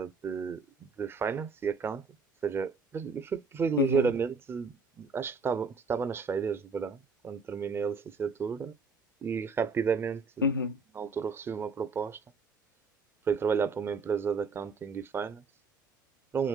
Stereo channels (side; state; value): left; quieter; 4.3 dB